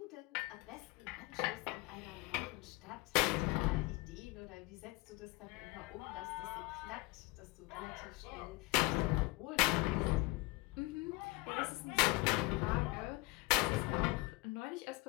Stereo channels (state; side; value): quieter; right; 22.5 dB